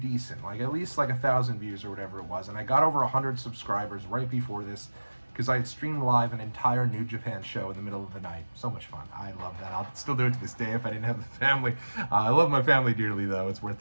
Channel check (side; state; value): both; inverted; correlation -1.00